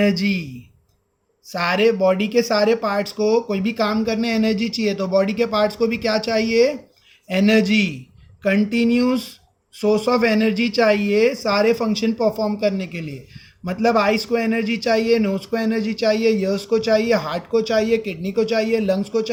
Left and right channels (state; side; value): identical; both; correlation 1.00